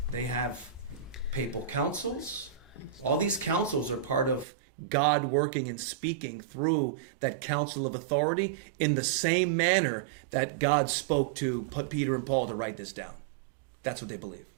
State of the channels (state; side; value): drops out; left; at 4.5 s